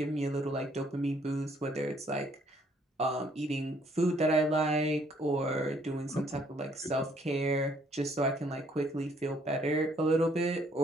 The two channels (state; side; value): normal; both; correlation 0.65